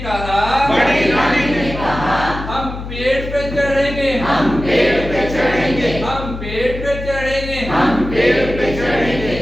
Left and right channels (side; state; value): left; noise; hum, 9 dB below the sound